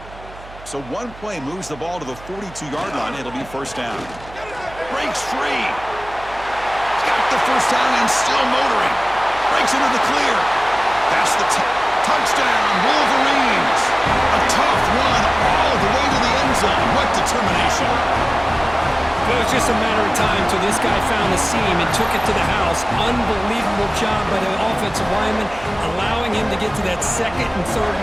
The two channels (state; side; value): noise; right; hum, 19 dB below the sound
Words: So one play moves the ball to the 42-yard line. It'll be first down. Breaks free. He's got the first down and still motoring. Breaks into the clear. That's the touchdown, Wolverines. A tough run all the way to the end zone. What determination. It was just a matter of time till this guy found the seam and took it to the house. Unbelievable job by the offensive lineman, allowing him to get to that second and third